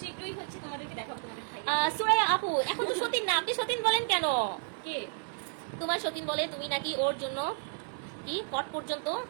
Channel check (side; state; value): left; silent; 57 dB below the other